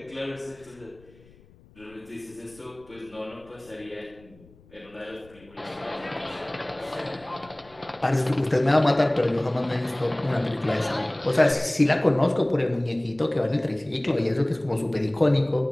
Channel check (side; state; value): left; noise; rumble, 26 dB below the sound